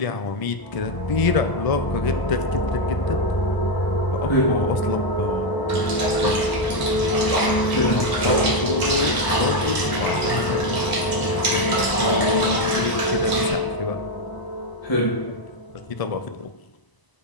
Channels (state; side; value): late; right; 1.0 ms